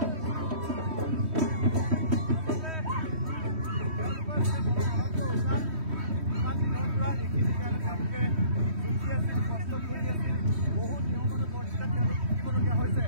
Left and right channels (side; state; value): left; late; 3.1 ms